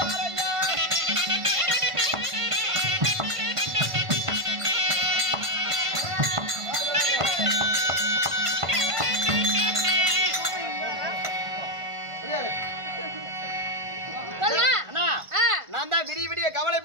சொல்லுங்க. அண்ணா ஆ. நான் தான் விடிய விடிய கவலை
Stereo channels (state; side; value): late; left; 1.5 ms